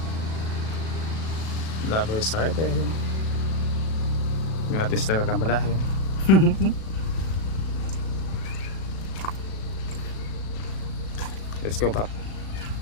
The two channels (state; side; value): late; right; 37 ms